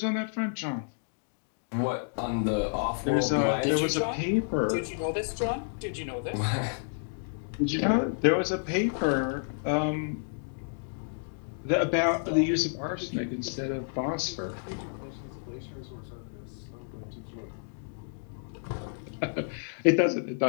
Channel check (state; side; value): silent; right; digital silence